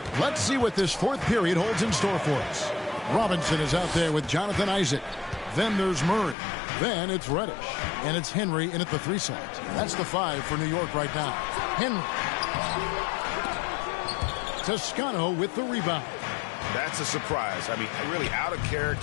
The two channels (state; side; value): drops out; right; at 6.4 s